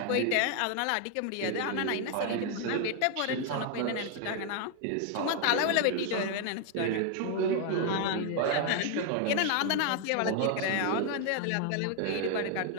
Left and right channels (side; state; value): both; different; correlation 0.00